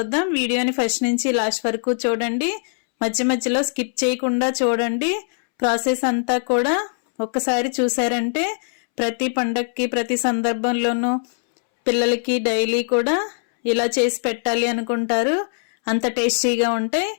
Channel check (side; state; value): right; silent; 65 dB below the other